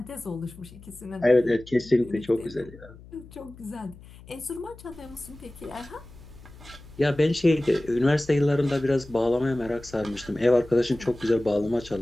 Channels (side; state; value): left; noise; hum, 20 dB below the sound